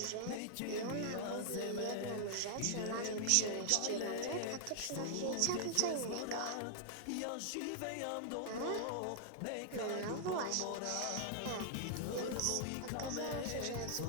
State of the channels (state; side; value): different; both; correlation -0.01